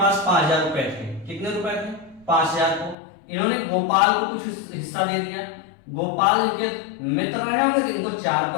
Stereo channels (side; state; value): right; drops out; at 3.0 s